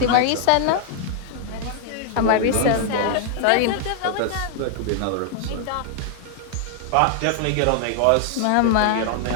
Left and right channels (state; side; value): different; both; correlation 0.00